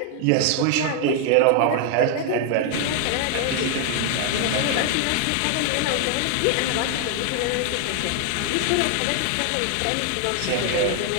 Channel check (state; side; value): different; both; correlation 0.00